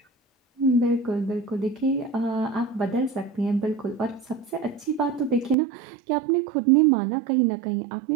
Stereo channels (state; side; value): drops out; left; at 5.6 s